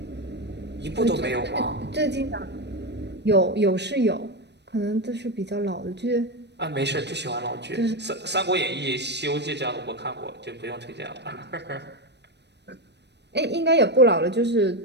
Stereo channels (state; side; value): late; left; 0.50 ms